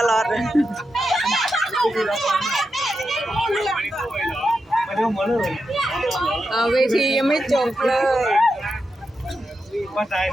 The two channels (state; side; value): normal; both; correlation 0.87